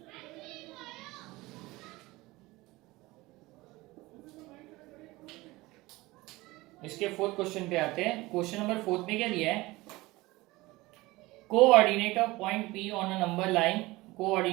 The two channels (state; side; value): quieter; left; 20.6 dB